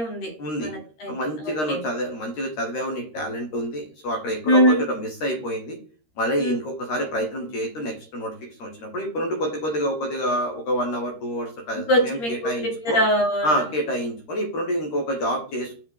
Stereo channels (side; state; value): right; late; 13 ms